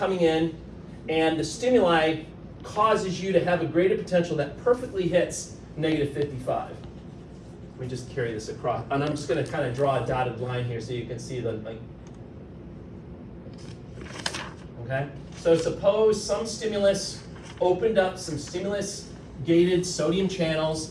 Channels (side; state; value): both; identical; correlation 1.00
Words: in, and the stimuli causes you to have a graded potential that perfectly hits negative 55. Let me just carry this across, and I'm just gonna kind of draw a dotted line here so you can see the, okay? So suppose some stimulus opened up some stimulus-gated sodium channels,